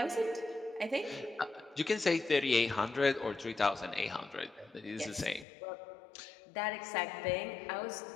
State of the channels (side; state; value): right; drops out; at 5.5 s